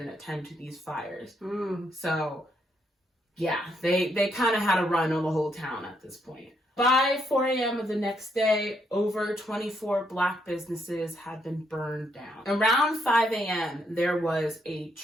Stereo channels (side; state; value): both; normal; correlation 0.75